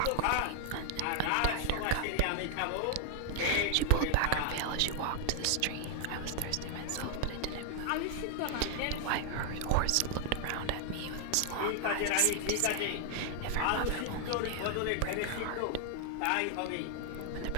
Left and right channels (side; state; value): both; different; correlation 0.00